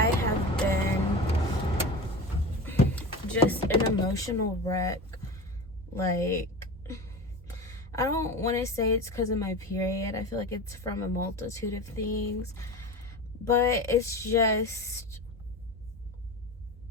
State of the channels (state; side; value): normal; both; correlation 0.29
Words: have been just an emotional wreck. Like, I don't want to say it's because of my period. I feel like it's from a multitude of things. But it's just,